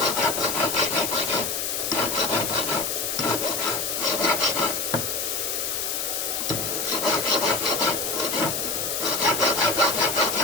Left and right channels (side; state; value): left; noise; hiss, 1 dB below the sound